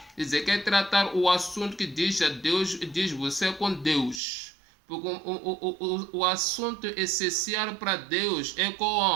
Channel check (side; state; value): left; drops out; at 4.2 s